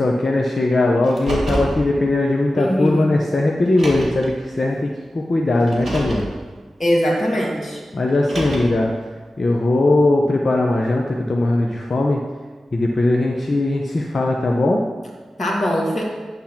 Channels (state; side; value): normal; both; correlation 0.94